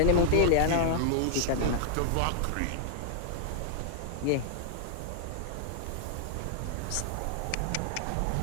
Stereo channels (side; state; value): both; different; correlation -0.01